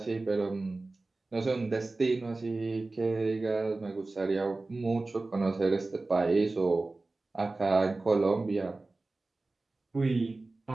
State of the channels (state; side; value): quieter; left; 3.3 dB